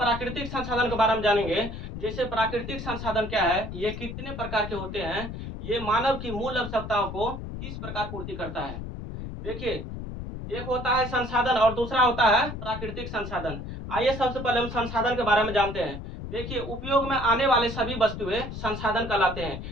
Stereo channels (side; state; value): left; noise; rumble, 8 dB below the sound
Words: संसाधन के बारे में जानेंगे। जैसे प्राकृतिक संसाधन क्या है, ये कितने प्रकार के होते हैं, ये मानव की मूल आवश्यकताओं को किस प्रकार पूर्ति करता है। देखिए, एक होता है संसाधन और दूसरा होता है प्राकृतिक संसाधन। आइए सबसे पहले हम संसाधन के बारे में जानते हैं। देखिए, उपयोग में आने वाले सभी वस्तुएं संसाधन कहलाते हैं।